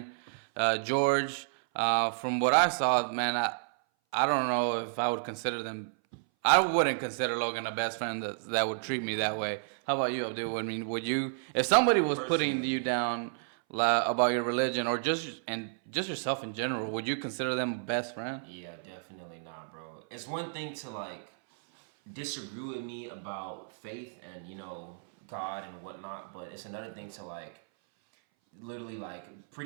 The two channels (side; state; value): left; silent; 57 dB below the other